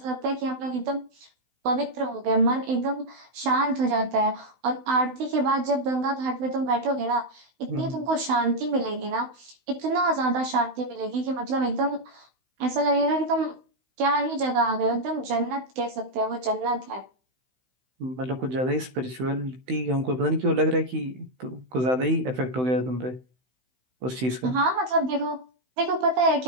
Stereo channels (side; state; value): left; late; 16 ms